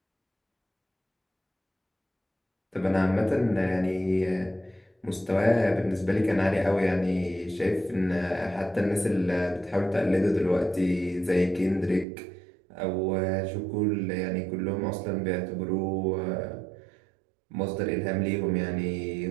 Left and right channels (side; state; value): left; drops out; at 12.1 s